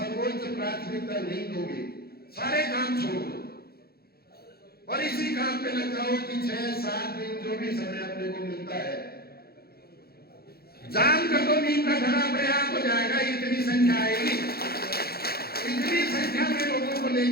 प्राथमिकता नहीं दोगे, सारे काम छोड़ दो और इसी काम पे लग जाओ कि 6-7 दिन जो भी समय अपने को मिलता है जाम कर दो, नीम का घड़ा अपने आप हो जाएगा। इतनी संख्या आएगी, इतनी संख्या में लोगों को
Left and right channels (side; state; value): right; late; 0.45 ms